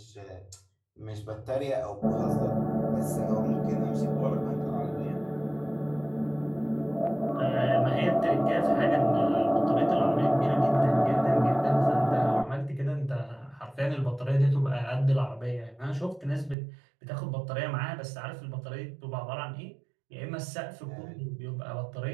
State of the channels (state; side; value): drops out; left; at 16.6 s